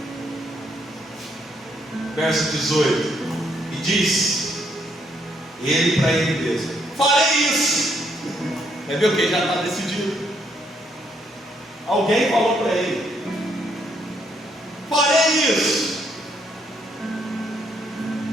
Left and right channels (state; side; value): normal; both; correlation 0.72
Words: Verso 18. E diz ele para ele mesmo: farei isso. É ver o que? Já está decidido. Alguém falou para ele: farei isso.